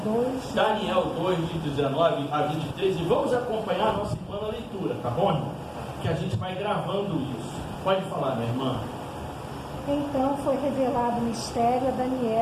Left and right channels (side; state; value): both; identical; correlation 1.00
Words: Daniel 2, de 19 a 23, e vamos acompanhar a nossa irmã na leitura, tá bom, irmão? Que a gente vai gravando isso. Pode falar, minha irmã. Então foi revelado o mistério a